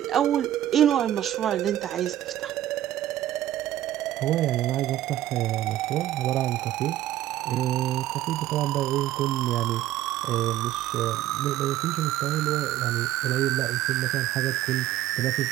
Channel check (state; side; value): quieter; left; 13.3 dB